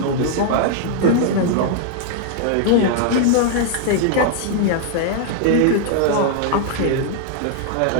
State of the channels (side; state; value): both; different; correlation 0.00